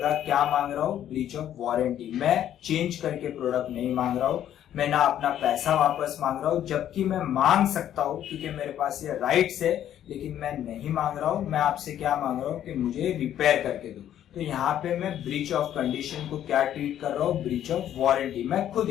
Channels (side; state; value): right; quieter; 10.9 dB